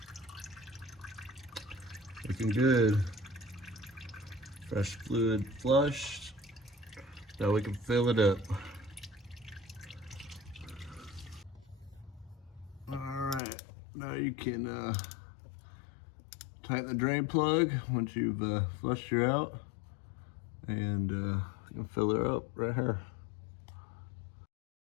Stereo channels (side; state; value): right; drops out; at 13.4 s